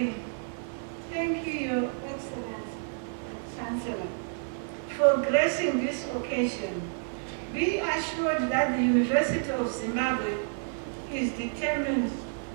thank you, Your Excellency, Chancellor, for gracing this occasion. Be assured that the University of Zimbabwe is determined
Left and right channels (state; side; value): silent; left; digital silence